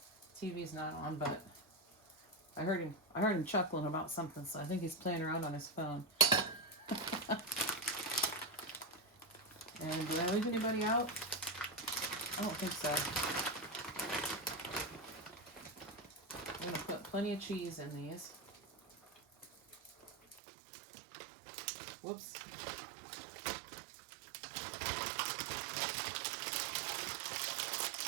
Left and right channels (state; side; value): drops out; left; at 20.4 s